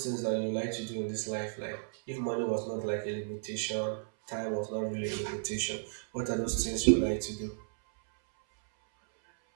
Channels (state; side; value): silent; left; 55 dB below the other